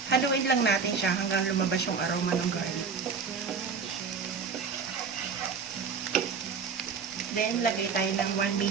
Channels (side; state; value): left; quieter; 5.6 dB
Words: Haluin lang natin siya hanggang lumabas yung aroma ng garlic. Then, lagay tayo ng 1